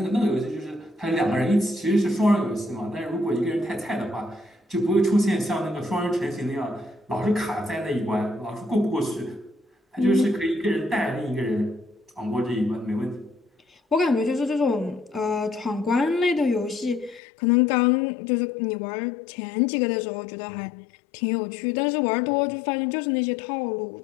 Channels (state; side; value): drops out; right; at 17.2 s